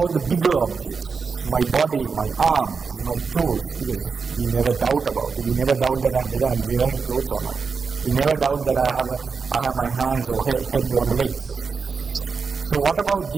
the bigger objects? My body, my arms, my clothes, because we never doubt about it. We never doubt that whether I'm wearing clothes or not. We never doubt that I have my hands or head or legs. So what about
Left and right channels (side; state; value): left; quieter; 5.2 dB